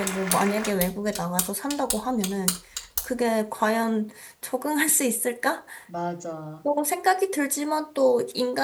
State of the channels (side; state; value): both; identical; correlation 1.00